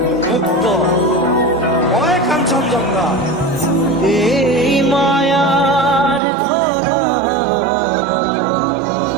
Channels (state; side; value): drops out; left; at 6.2 s